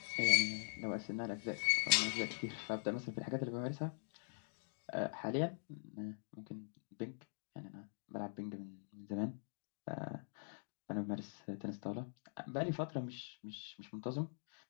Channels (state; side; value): silent; right; digital silence